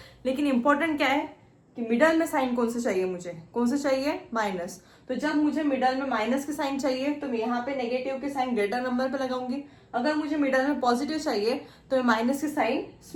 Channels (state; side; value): identical; both; correlation 1.00